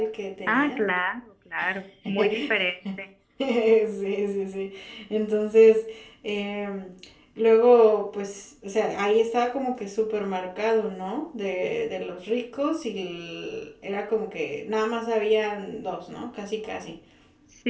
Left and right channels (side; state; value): both; identical; correlation 1.00